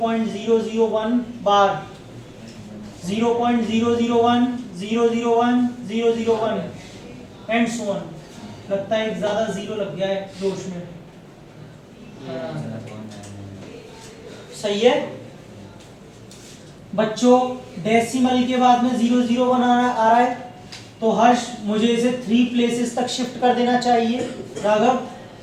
bar 0.001 001 001 and so on. लगता है एक ज्यादा जीरो लग गया है जोश में। सही है बच्चों, डेसिमल के बाद में 001 आ रहा है तो हर्ष मुझे इसे 3 प्लेसेस तक शिफ्ट कर देना चाहिए। राघव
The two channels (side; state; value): both; identical; correlation 1.00